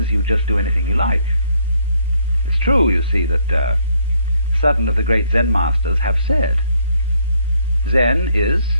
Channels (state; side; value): inverted; both; correlation -0.68